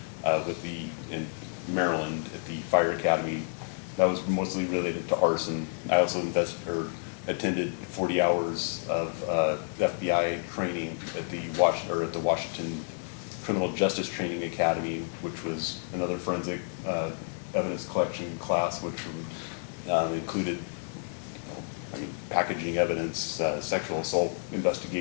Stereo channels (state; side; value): silent; right; 58 dB below the other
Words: in Maryland at the Fire Academy. That was mostly related to arson. I also attended 40 hours of FBI training at the Washington Criminal Justice Training Academy, which was another forensic evidence collection class, which included packaging evidence, sexual assault